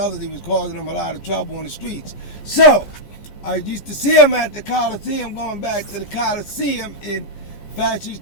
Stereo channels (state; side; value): late; right; 15 ms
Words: he was causing them a lot of trouble on the streets. So, I used to see him at the Coliseum, going back to the Coliseum, and Fats